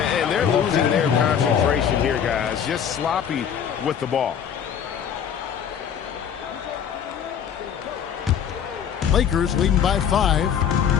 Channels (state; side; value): quieter; right; 8.3 dB